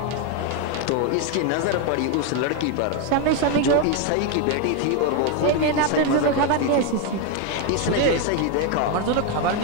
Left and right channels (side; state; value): both; different; correlation 0.01